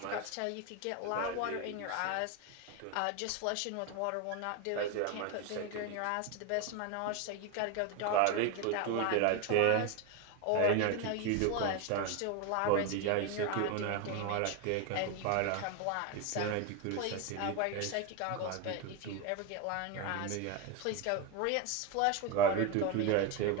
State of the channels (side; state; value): both; different; correlation 0.02